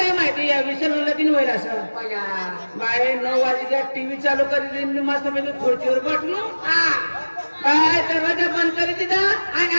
माहिती या विशाल लगीन होईल असं. बाय 9 वाजता टीव्ही चालू करी मस्त पैकी खुर्चीवर बसलो बाय दरवाजा बंद करी दिला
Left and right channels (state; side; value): inverted; both; correlation -1.00